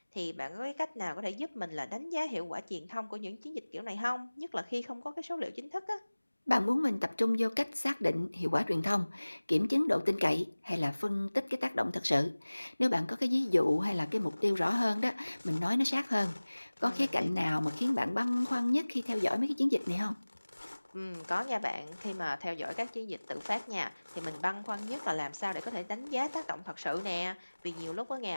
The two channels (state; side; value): inverted; both; correlation -1.00